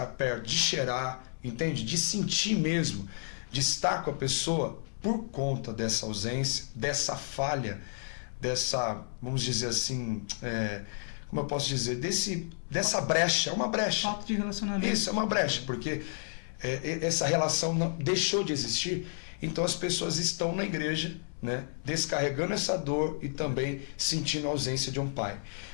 perto, de cheirar, entende? De sentir mesmo, de estar com a pessoa, por conta dessa ausência, dessa falha, dessa, vamos dizer assim, como eu posso dizer, dessa brecha, é uma brecha. Falta de relacionamento. Isso, é uma brecha, porque essa relação não, deixou de existir, então as pessoas estão na igreja, né, descarregando essa dor e também sentindo a ausência de um pai.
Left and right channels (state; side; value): silent; right; 57 dB below the other